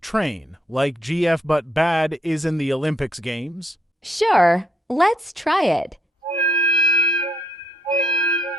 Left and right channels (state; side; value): normal; both; correlation 0.72